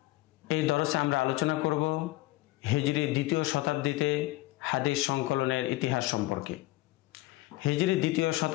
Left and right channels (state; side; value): quieter; right; 18.9 dB